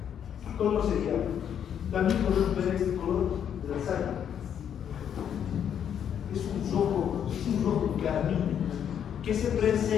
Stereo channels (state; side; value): quieter; right; 8.9 dB